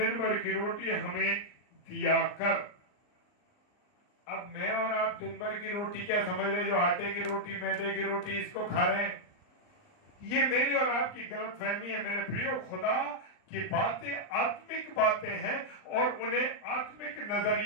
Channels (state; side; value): late; right; 39 ms